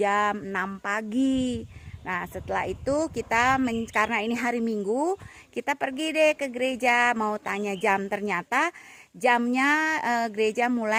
6 pagi. Nah, setelah itu karena ini hari Minggu, kita pergi deh ke gereja mau tanya jam. Ternyata jamnya gereja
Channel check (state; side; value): identical; both; correlation 1.00